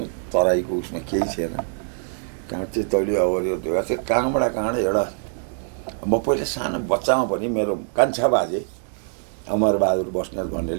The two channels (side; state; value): left; silent; 63 dB below the other